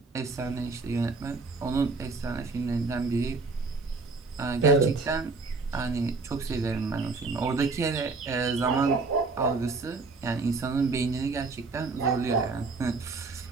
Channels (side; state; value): left; quieter; 4.0 dB